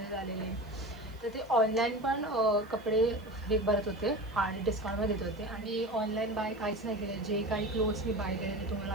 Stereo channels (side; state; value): right; noise; hiss, 29 dB below the sound